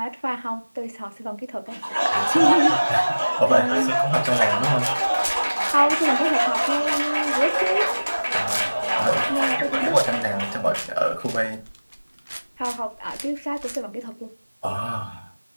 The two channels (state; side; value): inverted; both; correlation -1.00